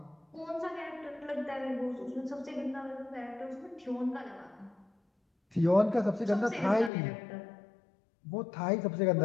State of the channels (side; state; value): right; drops out; at 6.9 s